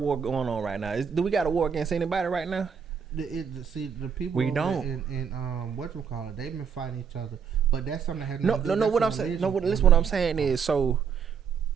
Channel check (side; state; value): left; quieter; 6.9 dB